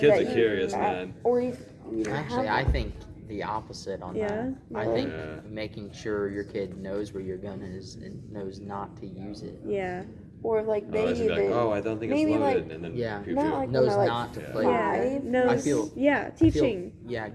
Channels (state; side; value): identical; both; correlation 1.00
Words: Kids that are you- curious, man. Or if you don't Actually, have I one. think the opposite on Yeah? that. I Really? think Yeah. making sure your kid knows where your gun is and knows not to use it. Yeah. Or like they Oh, it's like, even oh, I don't think it's maybe, loaded, like- and then Yeah. pew, not pew. like when Knows they're like not to Yeah. play. Yeah. five. No. I feel- Yeah. I feel- Teaching, yeah,